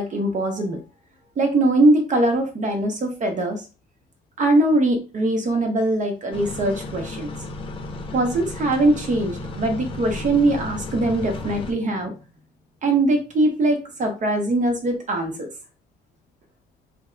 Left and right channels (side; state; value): both; normal; correlation 0.60